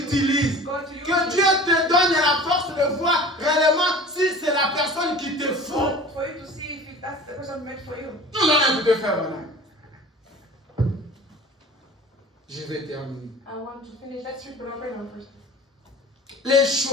Que Dieu te donne la force de voir réellement si c'est la personne qui te faut. For you to see if that's the person meant for you. Nous allons écouter Frère Branham. Je vais terminer. I want to finish. Let's read Brother Branham first. Les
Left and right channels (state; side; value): normal; both; correlation 0.41